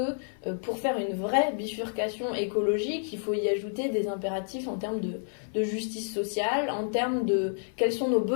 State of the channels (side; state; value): right; silent; 57 dB below the other